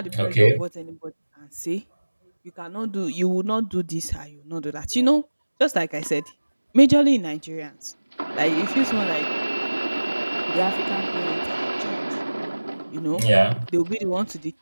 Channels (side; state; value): both; inverted; correlation -1.00